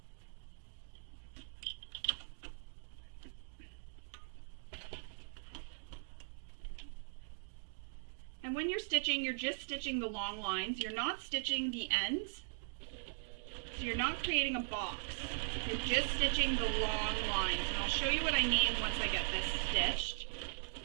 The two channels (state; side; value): silent; left; digital silence